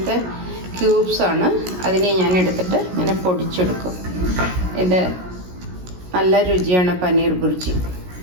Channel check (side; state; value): left; late; 17 ms